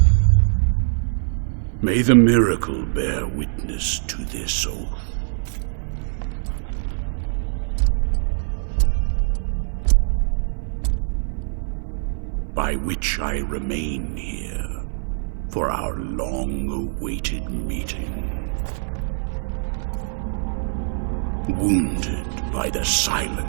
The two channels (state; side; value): silent; left; 62 dB below the other